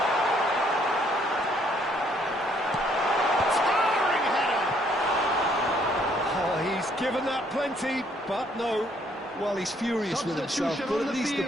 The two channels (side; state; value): both; normal; correlation 0.66